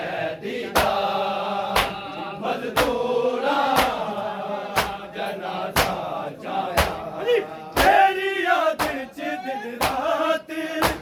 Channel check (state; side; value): identical; both; correlation 1.00